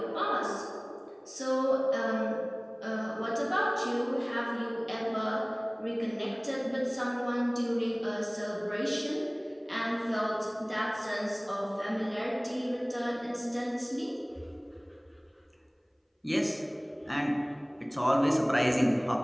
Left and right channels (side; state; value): both; identical; correlation 1.00